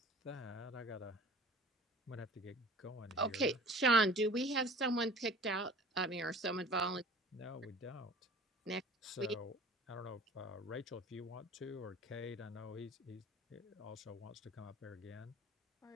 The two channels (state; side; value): normal; both; correlation 0.44